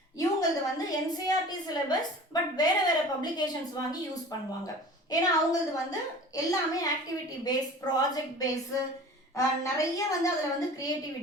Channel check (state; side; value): normal; both; correlation 0.41